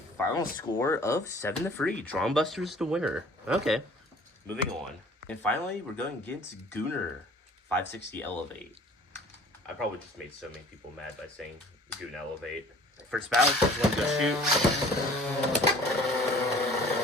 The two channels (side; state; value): both; normal; correlation 0.49